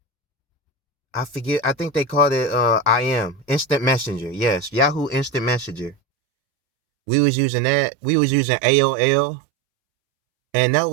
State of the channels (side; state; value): left; drops out; at 6.0 s